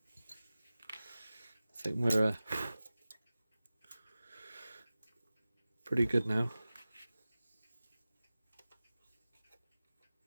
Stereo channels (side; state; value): both; inverted; correlation -0.97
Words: think we're pretty good now.